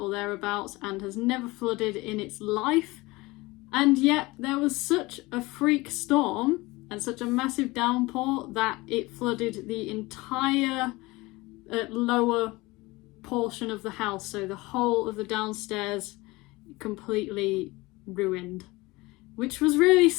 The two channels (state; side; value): quieter; right; 21.9 dB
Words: thereabouts and has never flooded in its life, and yet there was such a freak storm and such a massive downpour that it flooded the entire lower portion of the house, so the whole of the downstairs completely ruined, which was really